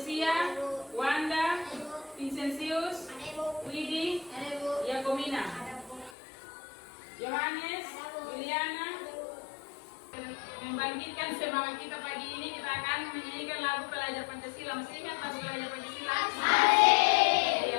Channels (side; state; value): right; drops out; at 6.1 s